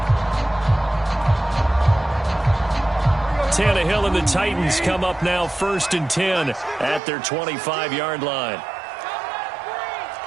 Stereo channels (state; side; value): drops out; left; at 7.0 s